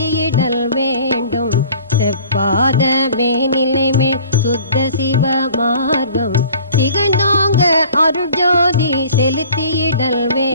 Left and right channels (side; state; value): both; inverted; correlation -0.49